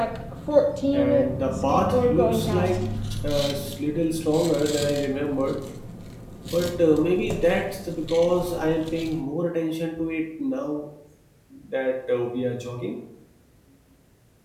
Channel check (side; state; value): both; identical; correlation 1.00